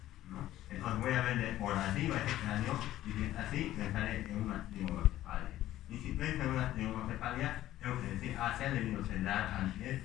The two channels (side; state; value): right; quieter; 14.0 dB